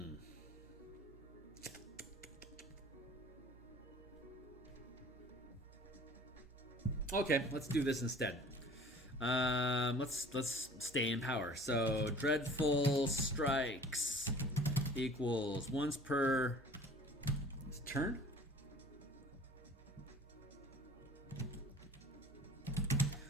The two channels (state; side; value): normal; both; correlation 0.47